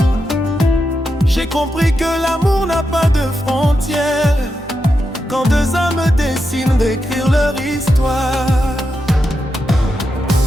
J'ai compris que l'amour n'a pas de frontières, quand deux âmes décident d'écrire leur histoire.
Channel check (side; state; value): both; normal; correlation 0.86